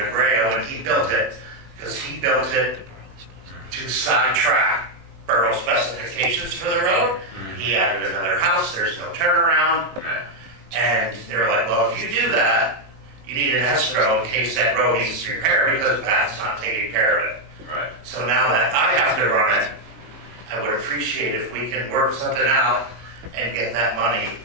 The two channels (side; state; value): left; late; 19 ms